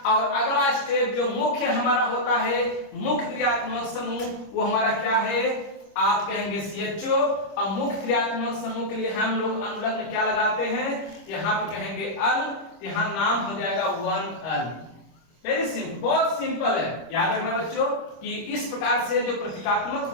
और अगला स्टेप जो मुख्य हमारा होता है, मुख्य क्रियात्मक समूह, वो हमारा क्या है, आप कहेंगे CHO। और मुख्य क्रियात्मक समूह के लिए हम लोग अनुलग्न क्या लगाते हैं, यहाँ पे कहेंगे अल, यहाँ नाम हो जाएगा 1L। वेरी सिंपल, बहुत सिंपल है। याद रखना बच्चों कि इस प्रकार से जो प्रतीकात्मक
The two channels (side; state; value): right; late; 25 ms